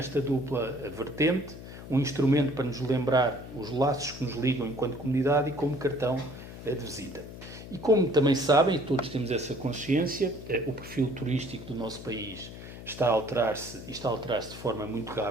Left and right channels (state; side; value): noise; left; hum, 13 dB below the sound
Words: dupla vertente, um instrumento para nos lembrar os laços que nos ligam enquanto comunidade e como cartão de visita. E como também sabem, e todos temos essa consciência, o perfil turístico do nosso país está a alterar-se de forma muito